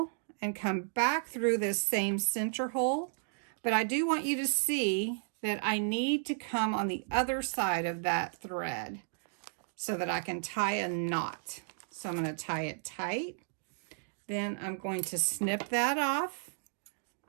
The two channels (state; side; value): silent; left; digital silence